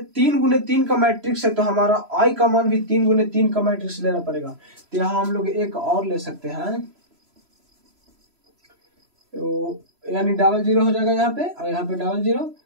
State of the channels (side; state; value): left; late; 3.0 ms